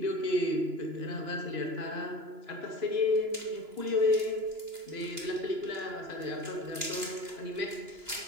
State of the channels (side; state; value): left; late; 2.9 ms